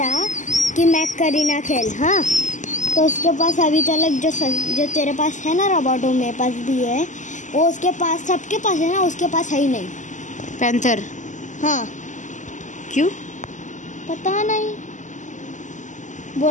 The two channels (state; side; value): late; right; 0.36 ms